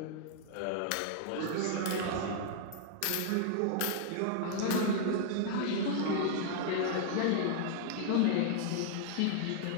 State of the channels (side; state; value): both; different; correlation -0.01